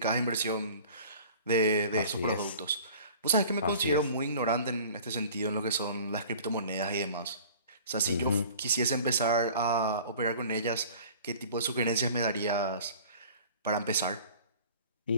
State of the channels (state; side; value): inverted; both; correlation -0.46